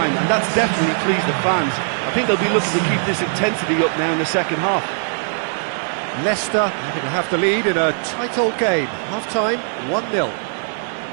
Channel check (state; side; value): silent; left; 66 dB below the other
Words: and that's definitely pleased the fans. I think they'll be looking to keep this intensity up now in the second half. Leicester having to have the lead in a tight old game. Half-time, 1-0.